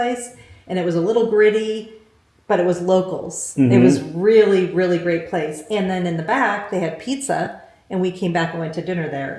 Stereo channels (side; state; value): both; identical; correlation 1.00